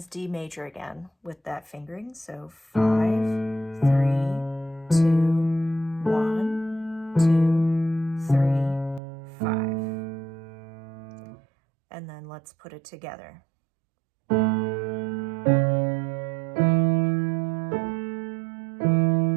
D major again with that fingering. So 5, 3, 2, 1, 2, 3, 5. And then let's put it together.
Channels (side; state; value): left; drops out; at 9.0 s